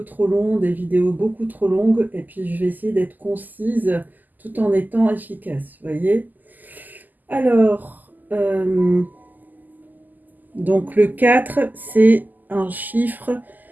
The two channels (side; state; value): left; late; 0.084 ms